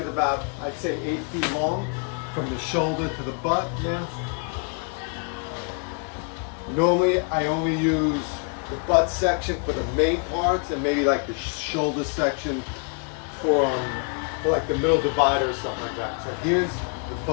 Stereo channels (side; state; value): right; quieter; 39.6 dB